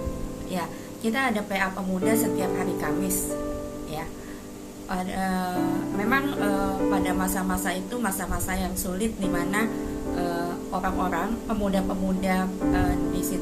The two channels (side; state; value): both; identical; correlation 1.00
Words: ya kita ada PA Pemuda setiap hari Kamis ya. Memang pada masa-masa itu masa-masa yang sulit, di mana orang-orang pemuda-pemuda di